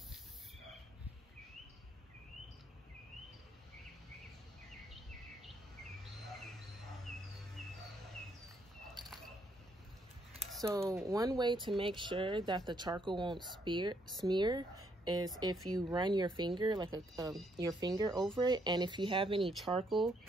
So one way to make sure that the charcoal won't smear is if you run your finger, like your finger over it, and if you have any charcoal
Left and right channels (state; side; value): normal; both; correlation 0.72